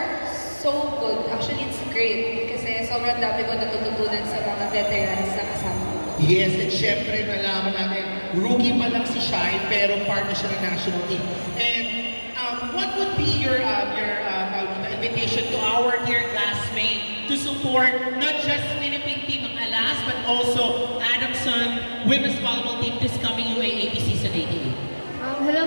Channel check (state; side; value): inverted; both; correlation -1.00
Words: so good. Actually, it's great kasi sobrang dami ko natututunan sa mga veterans na kasama ko. Yes, and syempre nalaman natin, rookie pa lang si Shai pero part na siya ng national team. And what would be your invitation to our dear classmates to support not just Philippine team ng Alas but also Adamson Women's Volleyball team this coming UAAP season 88?